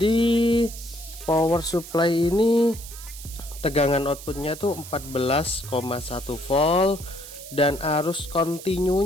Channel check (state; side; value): noise; right; hiss, 14 dB below the sound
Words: power supply ini tegangan outputnya tuh 14,1 volt dan arus